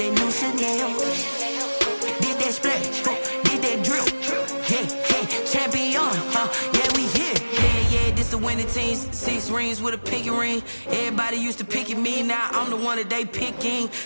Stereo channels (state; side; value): inverted; both; correlation -1.00